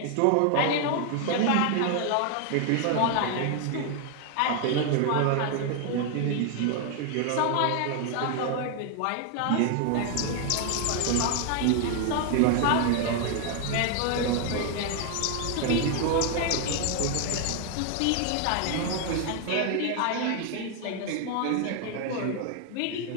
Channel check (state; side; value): different; both; correlation 0.01